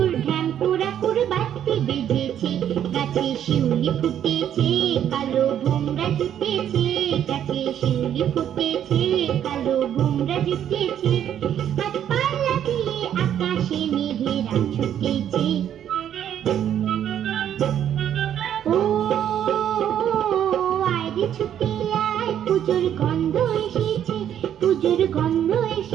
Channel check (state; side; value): quieter; left; 10.1 dB